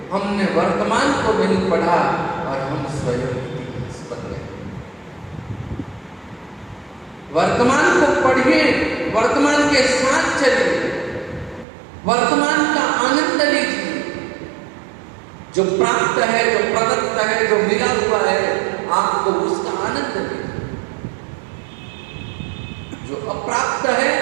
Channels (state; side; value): drops out; left; at 11.7 s